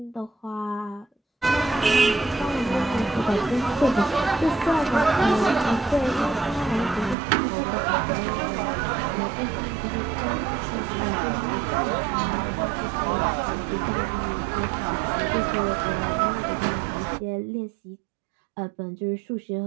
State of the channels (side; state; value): left; drops out; at 7.2 s